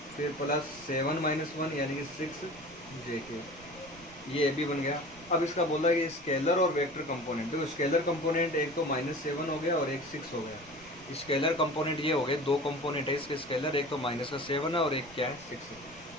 फिर +7 - 1 यानी कि 6 जे के, ये ए बी बन गया। अब इसका बोला कि स्केलर और वेक्टर कंपोनेंट, देखो स्केलर कंपोनेंट एक तो -7 हो गया और एक 6 हो गया। स्केलर कंपोनेंट ये हो गए, दो कंपोनेंट है इसके स्केलर, एक तो -7 है और एक क्या है 6 है।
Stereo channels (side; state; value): right; noise; rumble, 23 dB below the sound